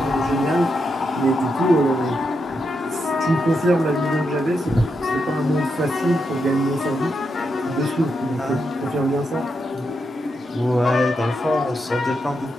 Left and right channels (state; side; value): normal; both; correlation 0.84